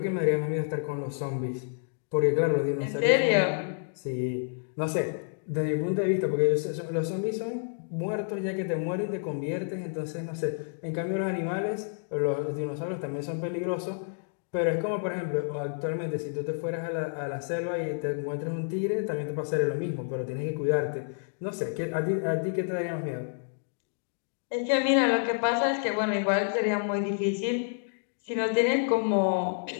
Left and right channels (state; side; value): silent; right; digital silence